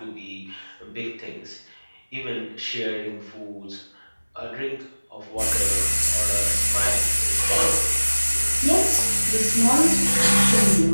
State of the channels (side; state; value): both; inverted; correlation -1.00